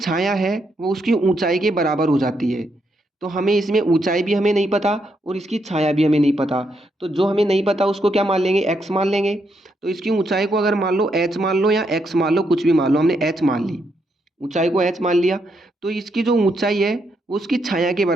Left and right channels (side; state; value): both; normal; correlation 0.78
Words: है वो उसकी ऊंचाई के बराबर हो जाती है। तो हमें इसमें ऊंचाई भी हमें नहीं पता और इसकी छाया भी हमें नहीं पता, तो जो हमें नहीं पता उसको क्या मान लेंगे, एक्स मान लेंगे। तो इसकी ऊंचाई को अगर मान लो एच मान लो या एक्स मान लो, कुछ भी मान लो, हमने एच मान ली, ऊंचाई को एच मान लिया, तो इसकी जो ऊंचाई है वो उसकी छाया के